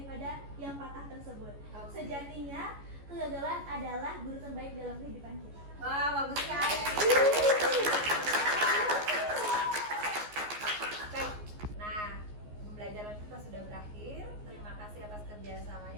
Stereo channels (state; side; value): late; left; 14 ms